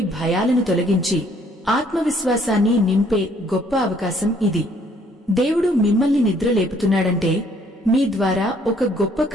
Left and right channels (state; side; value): normal; both; correlation 0.63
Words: భయాలను తొలగించి ఆత్మవిశ్వాసాన్ని నింపే గొప్ప అవకాశం ఇది. దేవుడు మిమ్మల్ని నిద్రలేపుతున్నాడంటే మీ ద్వారా ఒక గొప్ప